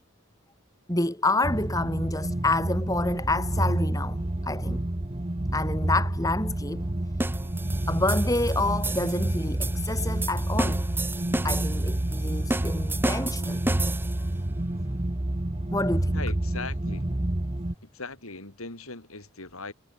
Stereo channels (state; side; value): normal; both; correlation 0.75